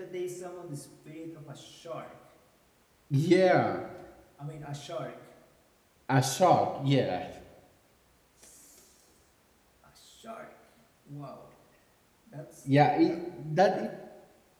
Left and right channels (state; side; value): identical; both; correlation 1.00